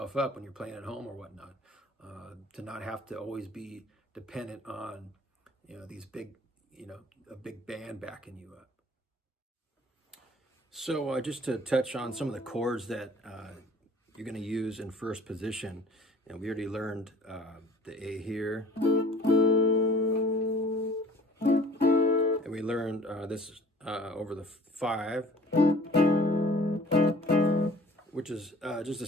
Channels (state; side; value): normal; both; correlation 0.51